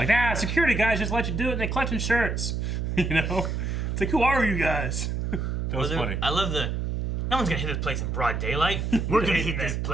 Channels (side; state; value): right; noise; hum, 1 dB below the sound